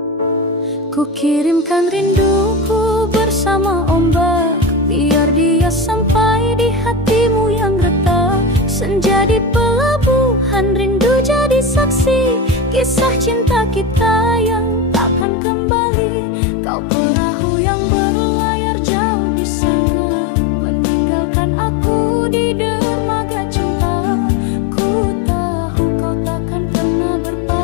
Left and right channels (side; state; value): right; drops out; at 15.2 s